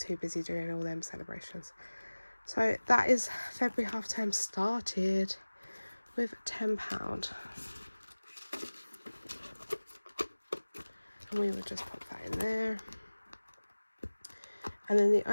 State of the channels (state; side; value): inverted; both; correlation -1.00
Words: busy doing all them celebrations. So that is February half term started with £10. And we would just pop that in there. And then the